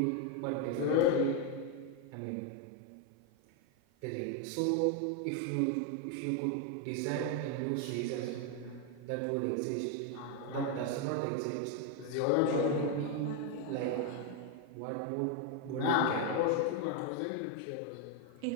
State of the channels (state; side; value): different; both; correlation 0.01